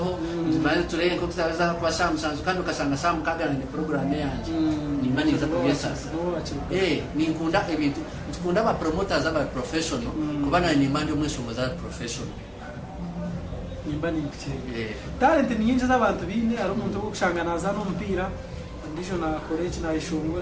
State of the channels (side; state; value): both; identical; correlation 1.00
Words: bari tureye ko tuzaza kwa Samsung kandi ukasanga Sam kagana ni program yanje nimba niza kugesa ninkunda ebintu tukunda ba promoters aba professional kubana ni mandi umwe songoza professional nimba ni talent ni nyingi z'abantu bine ari umuntu wo gushanganaza n'umupira ndijo na college na